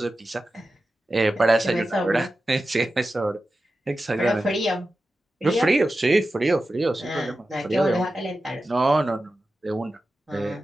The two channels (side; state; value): both; normal; correlation 0.93